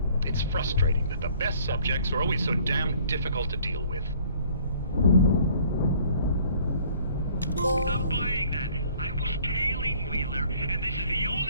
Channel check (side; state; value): both; inverted; correlation -0.57